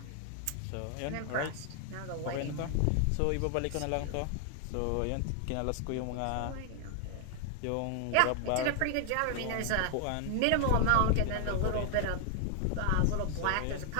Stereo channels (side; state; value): both; different; correlation 0.00